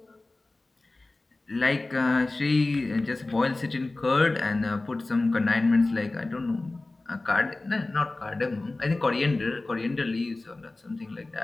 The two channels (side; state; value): right; quieter; 3.1 dB